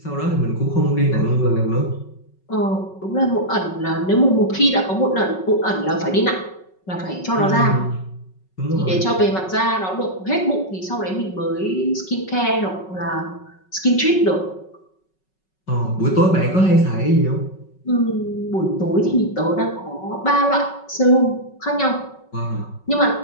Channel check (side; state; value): right; late; 5.4 ms